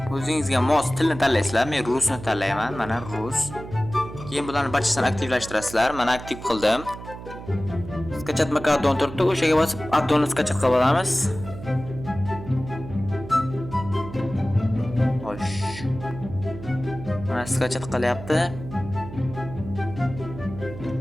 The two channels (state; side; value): noise; right; hum, 12 dB below the sound